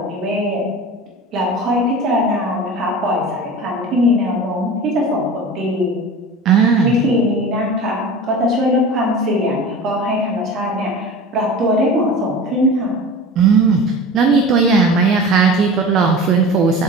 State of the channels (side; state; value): both; normal; correlation 0.35